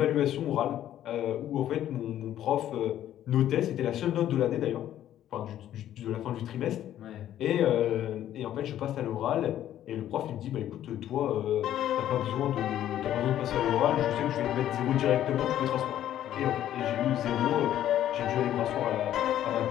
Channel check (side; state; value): right; quieter; 11.8 dB